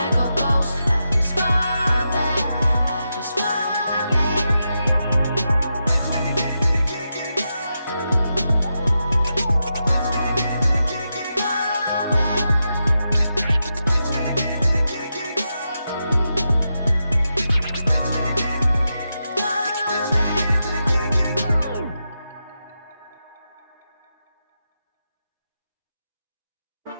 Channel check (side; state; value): both; inverted; correlation -0.87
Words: go ghost, I just fall